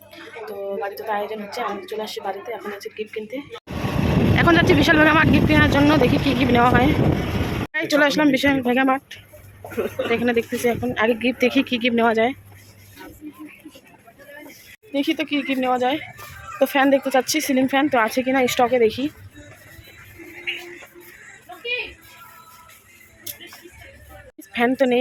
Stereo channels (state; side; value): identical; both; correlation 1.00